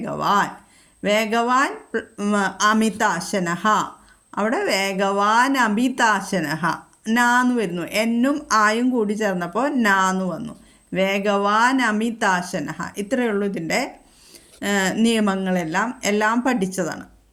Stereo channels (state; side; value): identical; both; correlation 1.00